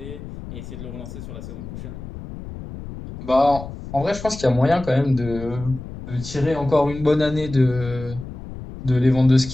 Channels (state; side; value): noise; left; rumble, 11 dB below the sound